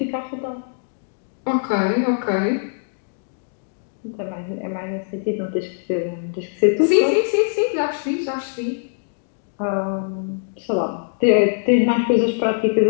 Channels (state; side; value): silent; right; digital silence